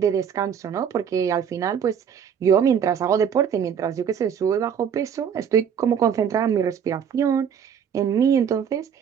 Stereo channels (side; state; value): left; quieter; 7.9 dB